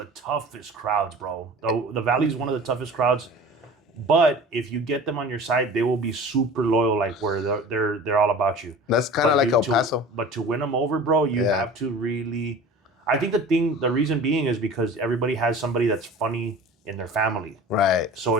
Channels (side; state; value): both; normal; correlation 0.39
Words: toughest crowds, bro. The Valley's one of the toughest crowds. But if you get them on your side, they will be super loyal, like where they're all about you. That's kind of like El Paso. But to win them over, bro, you have to really. I think the reason being is because everybody has somebody that's funny in their family. Right. So